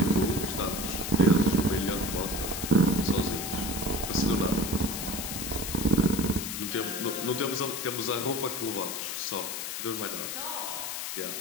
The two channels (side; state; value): left; noise; hiss, 5 dB below the sound